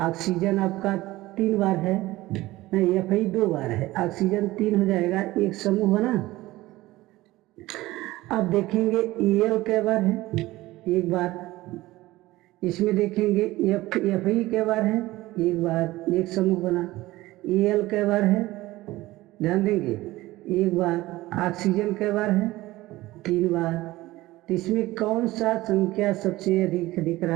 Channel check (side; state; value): left; quieter; 18.0 dB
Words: आपका तीन बार है, नहीं Fe दो बार है, ऑक्सीजन तीन हो जाएगा, एक समूह बना। अब देखेंगे Al के बार है, एक बार। इसमें देखेंगे Fe के बार है, एक बार, एक समूह बना। Al के बार है, ध्यान देंगे, एक बार। ऑक्सीजन के बार है, तीन बार। तो इसमें कौन सा संख्या सबसे अधिक दिख